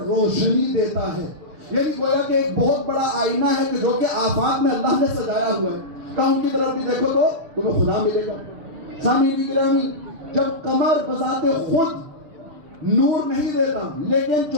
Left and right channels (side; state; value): left; late; 6.9 ms